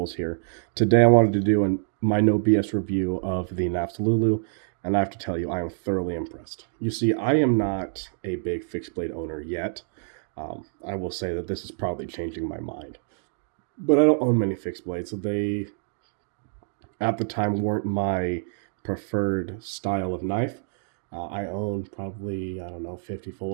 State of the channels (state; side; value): silent; left; digital silence